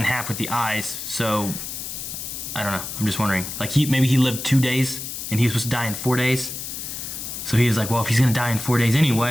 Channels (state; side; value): noise; left; hiss, 7 dB below the sound